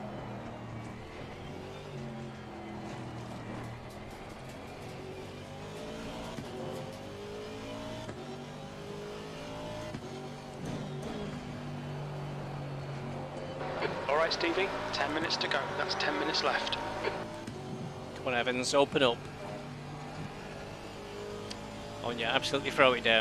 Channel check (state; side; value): identical; both; correlation 1.00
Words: Alright, Stevie, 10 minutes to go. That's 10 minutes left. Come on, Evans, open up. Oh, yeah, absolutely throw it